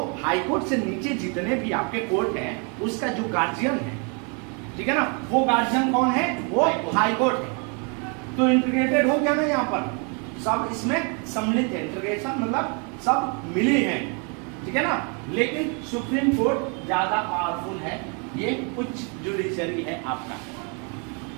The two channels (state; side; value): quieter; left; 35.6 dB